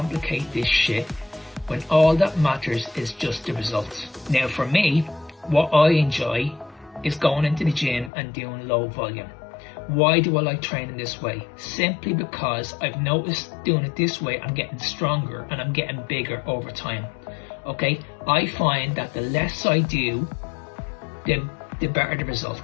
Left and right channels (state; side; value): drops out; right; at 8.1 s